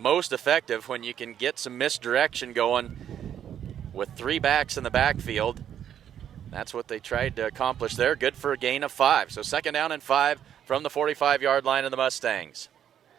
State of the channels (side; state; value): left; quieter; 9.7 dB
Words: effective when you can get some misdirection going with 3 backs in the backfield. That's what they tried to accomplish there. Good for a gain of 5. So second down and 5 from the 45-yard line of the Mustangs.